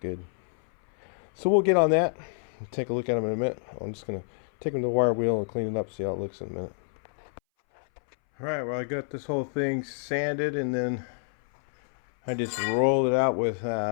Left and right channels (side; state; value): right; silent; 59 dB below the other